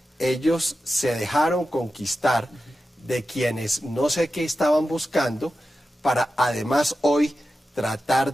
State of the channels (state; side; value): normal; both; correlation 0.92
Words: ellos se dejaron conquistar de quienes no sé qué estaban buscando, para además hoy tratar